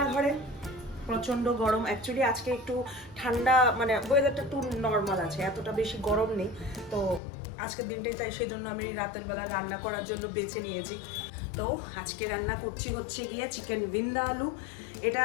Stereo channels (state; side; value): drops out; right; at 7.2 s